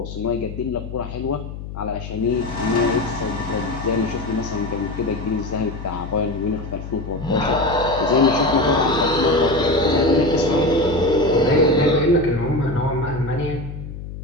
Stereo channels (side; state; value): left; noise; hum, 10 dB below the sound